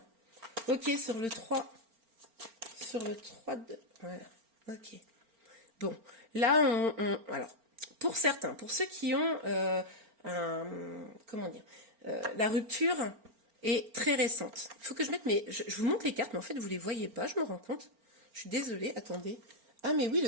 Ok, sur le 3. Sur le 3 de... Voilà, ok. Bon, là, alors, pour certains, pour ceux qui ont comment dire, la rupture est très récente. Il faut que je mette mes... Je vous montre les cartes, mais en fait, vous ne les voyez pas, je me rends compte. Je suis désolée, attendez. Ah, mais oui,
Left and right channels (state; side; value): late; left; 4.4 ms